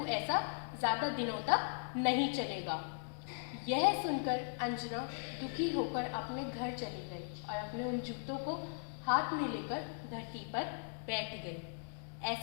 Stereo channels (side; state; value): right; silent; digital silence